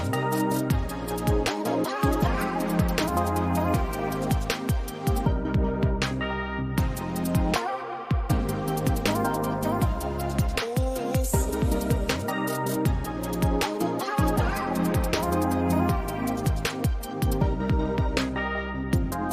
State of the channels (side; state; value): both; identical; correlation 1.00